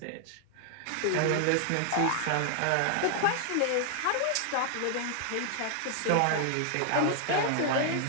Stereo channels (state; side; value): different; both; correlation 0.00